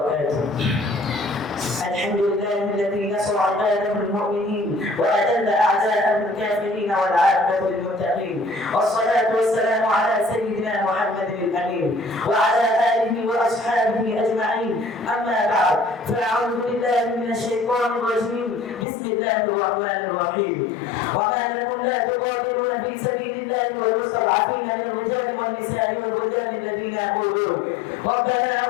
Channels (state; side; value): drops out; right; at 18.9 s